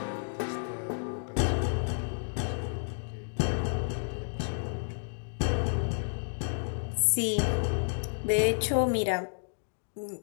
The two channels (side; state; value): right; silent; digital silence